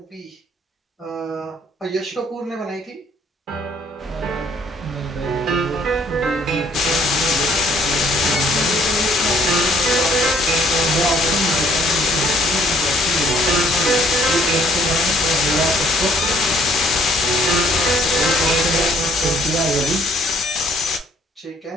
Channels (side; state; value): both; normal; correlation 0.62